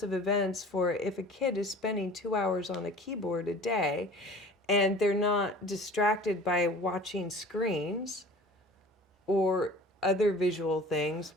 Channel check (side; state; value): both; normal; correlation 0.43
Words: of events for if a kid is spending 2 hours on a keyboard a day and they're not distracted by watching screens or other visual things,